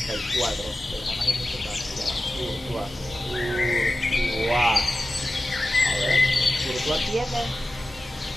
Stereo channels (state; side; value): normal; both; correlation 0.94